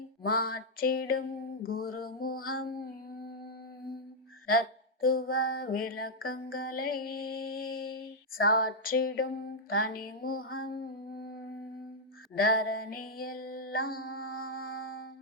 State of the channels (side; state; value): both; normal; correlation -0.04